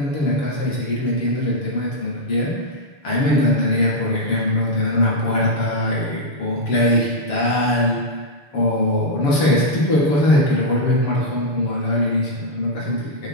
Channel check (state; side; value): late; right; 7.1 ms